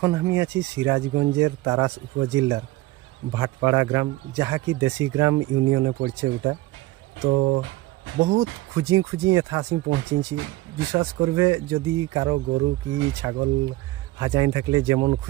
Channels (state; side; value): quieter; left; 18.3 dB